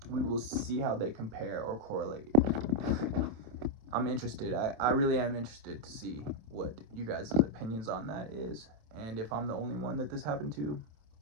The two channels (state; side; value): late; left; 27 ms